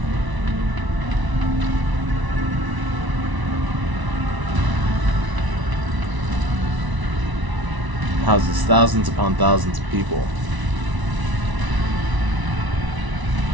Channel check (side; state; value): left; late; 1.0 ms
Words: Houses thousands upon thousands of people.